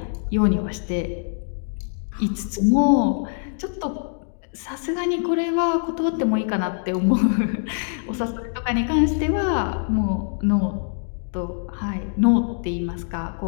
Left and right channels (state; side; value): silent; right; digital silence